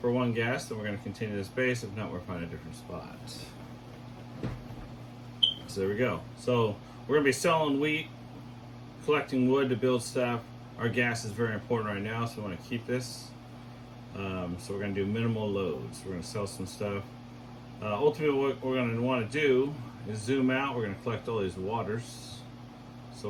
for 1 gas, then we're going to continue this base. If not, we'll find a different spot. So there we go. So we're going to be selling wheat, collecting wood to build stuff. Our gas is very important right now, so we want to keep this. So we're going to do minimal loads. We're going to sell some stuff. Ultimately, what we're going to want to do is zoom out. We're going to collect all these waters. So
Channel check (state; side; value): identical; both; correlation 1.00